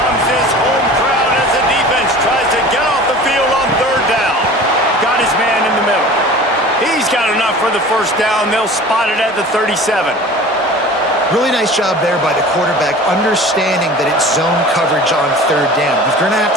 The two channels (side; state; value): both; normal; correlation 0.41